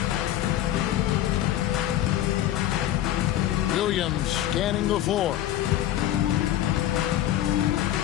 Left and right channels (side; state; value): right; quieter; 12.4 dB